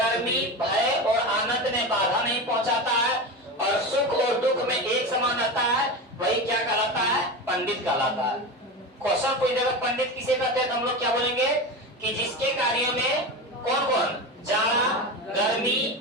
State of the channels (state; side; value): normal; both; correlation 0.24